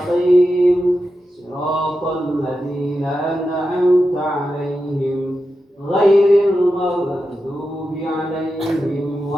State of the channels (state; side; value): normal; both; correlation 0.90